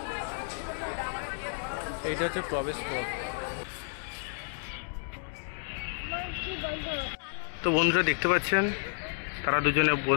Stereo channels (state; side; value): silent; right; 57 dB below the other